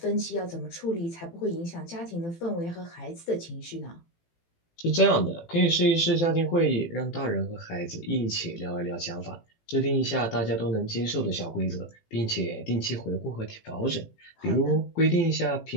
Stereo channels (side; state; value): right; late; 18 ms